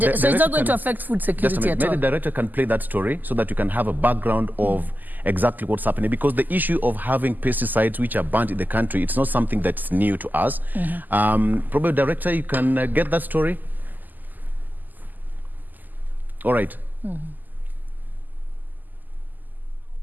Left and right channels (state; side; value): late; left; 0.085 ms